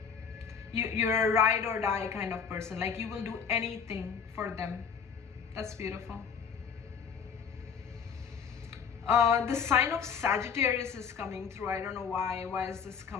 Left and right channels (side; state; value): right; quieter; 6.6 dB